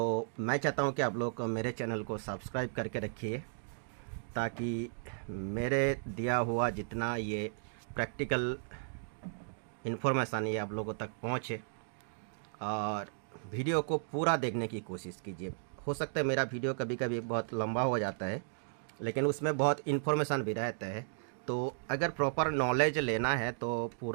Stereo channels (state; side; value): silent; left; digital silence